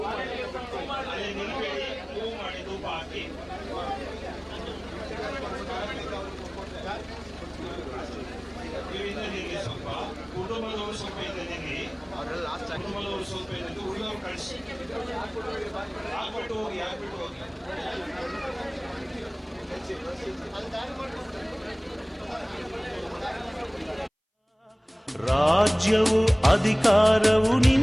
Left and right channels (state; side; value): identical; both; correlation 1.00